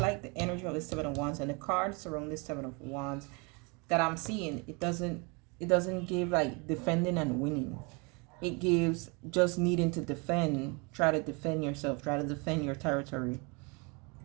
like the energy of the Seven of Wands, and the cards around this Seven of Wands that I'm seeing. It doesn't give like defending and winning. It gives just needing to defend. Try to defend yourself. Try to defend your territory.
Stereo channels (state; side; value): quieter; left; 30.5 dB